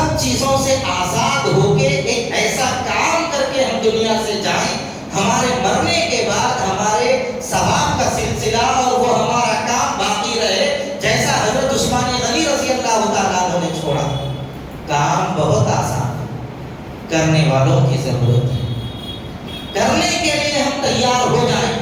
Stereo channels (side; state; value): both; identical; correlation 1.00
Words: چیزوں سے آزاد ہو کے ایک ایسا کام کر کے ہم دنیا سے جائیں، ہمارے مرنے کے بعد ہمارے ثواب کا سلسلہ اور وہ ہمارا کام باقی رہے، جیسا حضرت عثمان غنی رضی اللہ تعالیٰ عنہ نے چھوڑا۔ کام بہت آسان ہے، کرنے والوں کی ضرورت ہے، کرنے کے لیے ہم تیار ہو جائیں۔